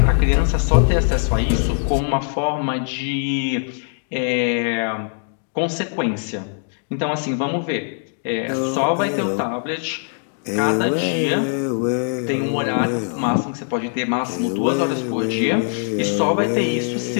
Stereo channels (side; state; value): right; silent; digital silence